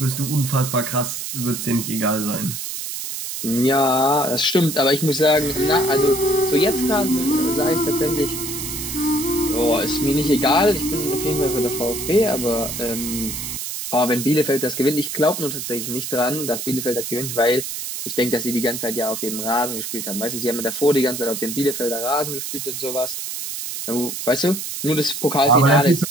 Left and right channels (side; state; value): right; noise; hiss, 6 dB below the sound